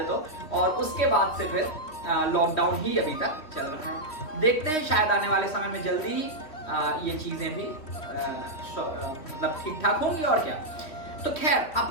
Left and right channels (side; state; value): right; late; 3.1 ms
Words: तो, और उसके बाद से फिर लॉकडाउन ही अभी तक चल रहा है। देखते हैं शायद आने वाले समय में जल्दी ही ये चीज़ें भी मतलब ठीक ठाक होंगी, और क्या। तो खैर,